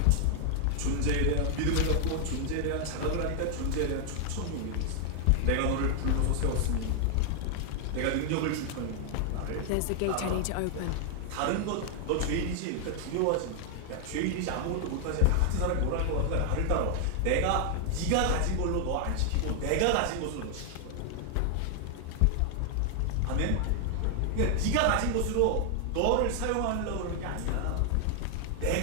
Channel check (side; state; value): both; different; correlation 0.00